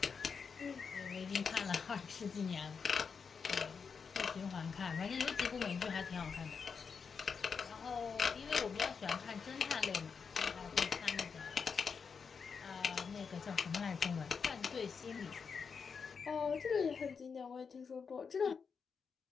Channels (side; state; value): right; quieter; 5.8 dB